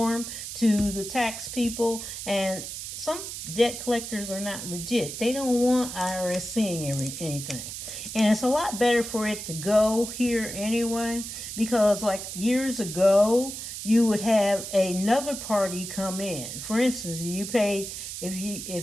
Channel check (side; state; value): right; noise; hiss, 8 dB below the sound